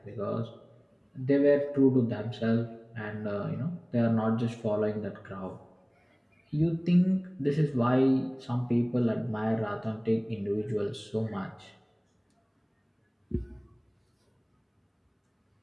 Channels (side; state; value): both; identical; correlation 1.00